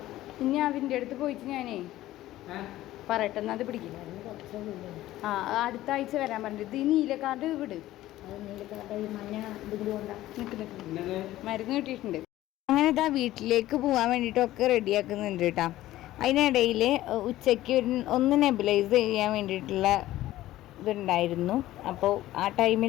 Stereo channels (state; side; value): quieter; right; 15.2 dB